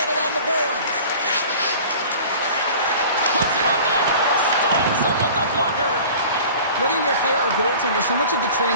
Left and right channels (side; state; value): both; inverted; correlation -0.43